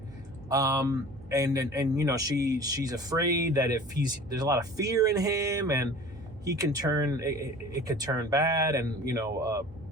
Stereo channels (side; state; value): right; noise; hum, 21 dB below the sound